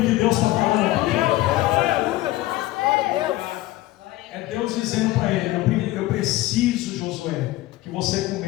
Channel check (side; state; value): right; quieter; 17.1 dB